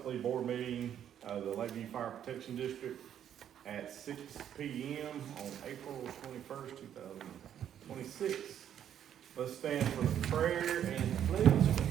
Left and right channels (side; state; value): left; quieter; 9.8 dB